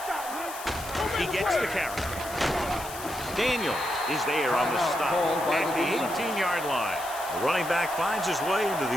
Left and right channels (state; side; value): noise; left; hiss, 12 dB below the sound